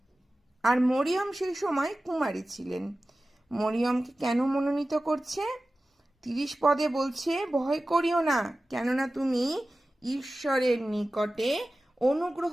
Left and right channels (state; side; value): normal; both; correlation 0.95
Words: আর মরিয়ম সেই সময় কুমারী ছিলেন। মরিয়মকে কেন মনোনীত করছে? 30 পদে বলছে, ভয় করিও না, কেননা তুমি ঈশ্বরের নিকটে অনুগ্রহ